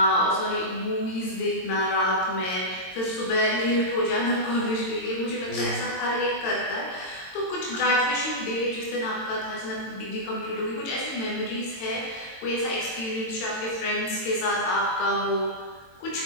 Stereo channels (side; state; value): right; late; 22 ms